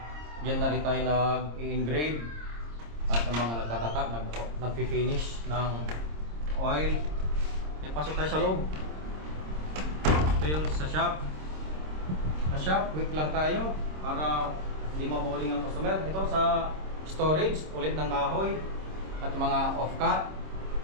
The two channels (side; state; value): left; late; 26 ms